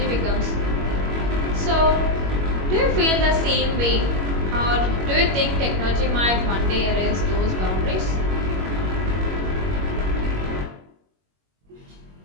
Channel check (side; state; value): left; late; 21 ms